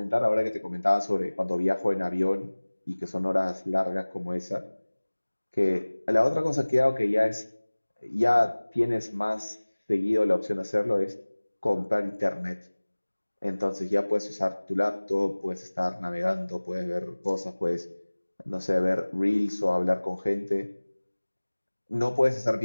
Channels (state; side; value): inverted; both; correlation -1.00